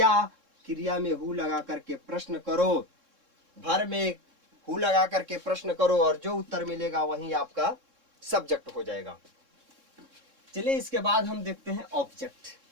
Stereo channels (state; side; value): late; left; 3.7 ms